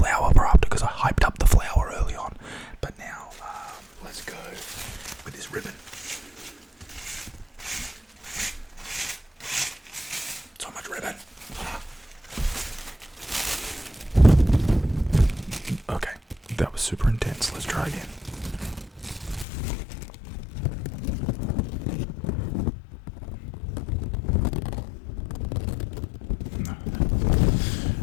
for after because I hyped up the flower early on. But now, let's go with this ribbon. So much ribbon. Okay, that was super intense. Let's try again.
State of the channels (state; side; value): drops out; right; at 19.5 s